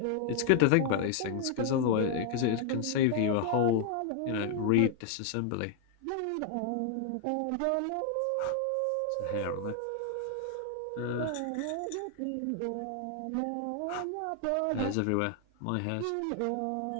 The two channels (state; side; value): different; both; correlation 0.00